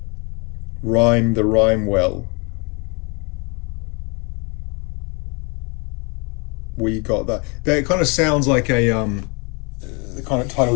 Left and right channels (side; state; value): right; quieter; 31.4 dB